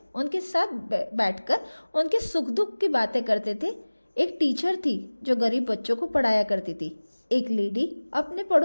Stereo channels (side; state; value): both; inverted; correlation -1.00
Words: उनके साथ बैठकर उनके सुख दुख की बातें करते थे। एक टीचर थी जो गरीब बच्चों को पढ़ाया करती थी। एक लेडी अपने